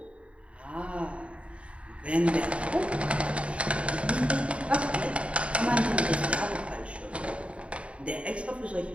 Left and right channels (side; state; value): left; late; 0.062 ms